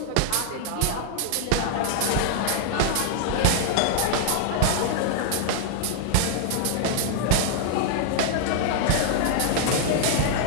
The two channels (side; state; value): both; different; correlation -0.01